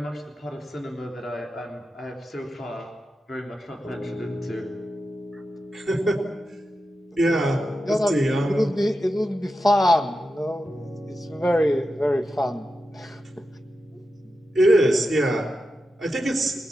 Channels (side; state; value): both; normal; correlation 0.90